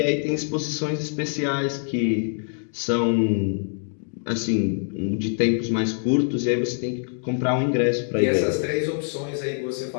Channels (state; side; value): silent; right; 62 dB below the other